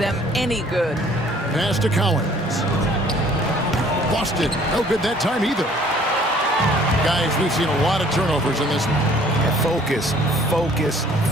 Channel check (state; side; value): normal; both; correlation 0.56